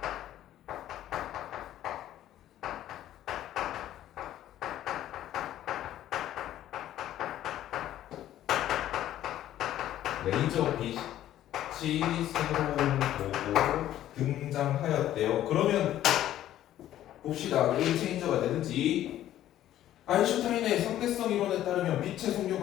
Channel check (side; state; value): right; quieter; 12.6 dB